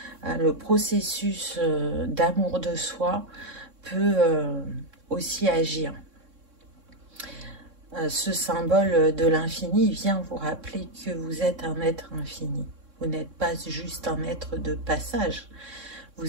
le processus d'amour de soi peut aussi agir. Ce symbole de l'infini vient vous rappeler que vous êtes un être infini. Vous n'êtes pas juste un être de passage.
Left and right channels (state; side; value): late; left; 3.6 ms